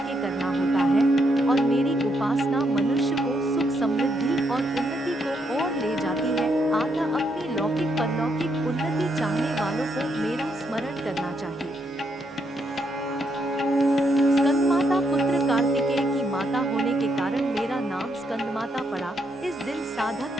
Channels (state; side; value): normal; both; correlation 0.77